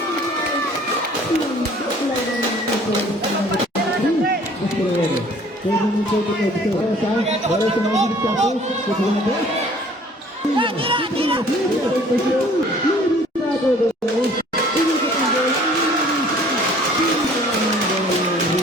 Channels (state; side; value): normal; both; correlation 0.53